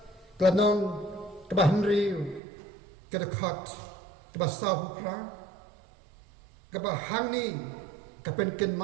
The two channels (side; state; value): left; drops out; at 2.4 s